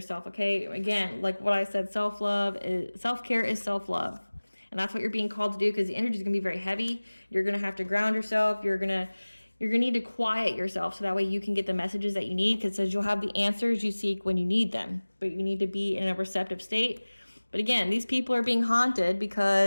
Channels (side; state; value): both; inverted; correlation -1.00